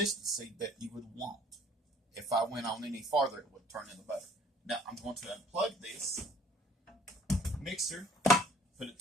that you would want. If I went on any farther, it would turn into butter. Now, I'm going to unplug this mixer, put it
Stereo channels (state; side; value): normal; both; correlation 0.56